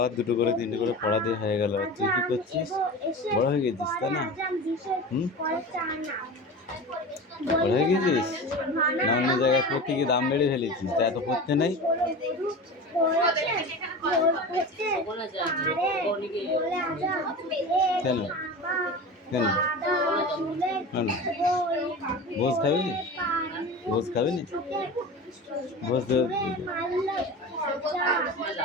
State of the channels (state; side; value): normal; both; correlation 0.31